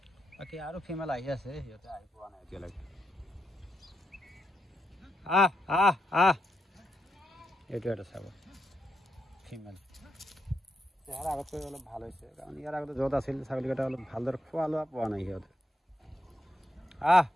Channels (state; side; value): normal; both; correlation 0.82